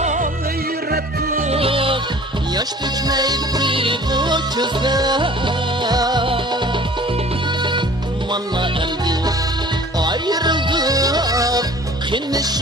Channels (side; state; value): both; normal; correlation 0.47